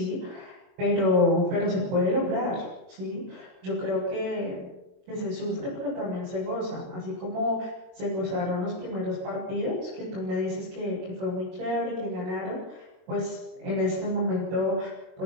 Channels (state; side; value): late; left; 22 ms